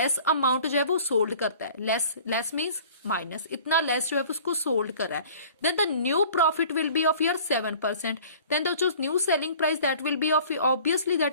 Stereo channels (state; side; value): inverted; both; correlation -0.48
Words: अमाउंट जो है वो सोल्ड करता है, लेस मीन्स माइनस, इतना लेस जो है उसको सोल्ड कर रहा है, then the new profit will be of your 7%. Then the जो new selling price that will be of, obviously